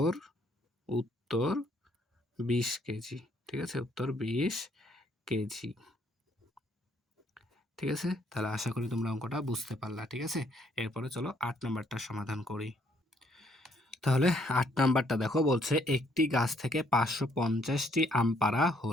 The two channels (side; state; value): both; normal; correlation 0.68